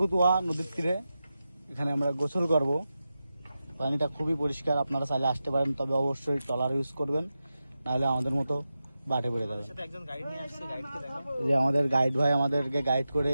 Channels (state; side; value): inverted; both; correlation -0.91